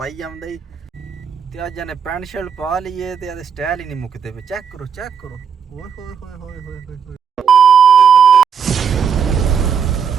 ਜਾਂਦਾ ਹੀ ਤੇ ਅੱਜ ਇਹਨੇ ਪੈਂਟ ਸ਼ਰਟ ਪਾ ਲਈਏ ਤੇ ਇਹਦੇ ਸਟਾਈਲ ਹੀ ਨਹੀਂ ਮੁੱਕਦੇ ਪਏ। ਚੈੱਕ ਕਰੋ ਓਏ ਹੋਏ ਹੋਏ ਹੋਏ ਹੋਏ ਹੋਏ।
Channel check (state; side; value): quieter; left; 7.0 dB